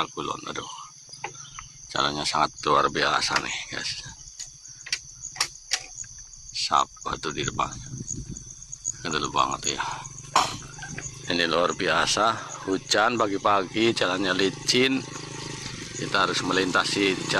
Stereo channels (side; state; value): both; identical; correlation 1.00